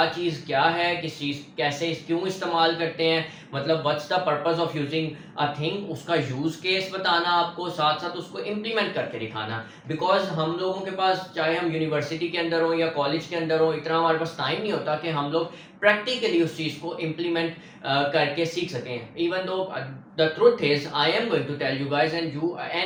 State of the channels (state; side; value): identical; both; correlation 1.00